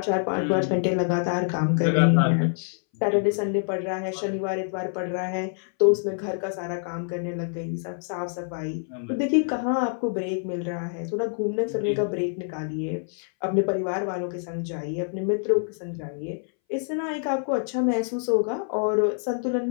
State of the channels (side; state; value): right; silent; 61 dB below the other